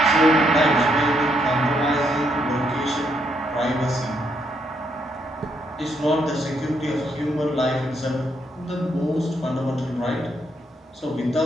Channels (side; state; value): both; normal; correlation 0.75